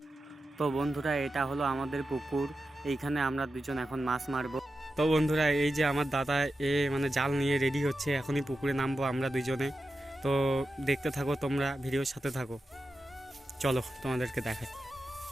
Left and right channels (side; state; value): both; normal; correlation 0.91